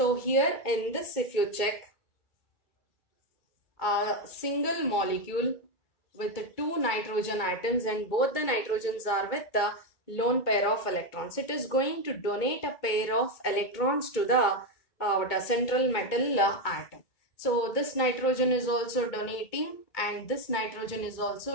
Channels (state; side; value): late; right; 2.2 ms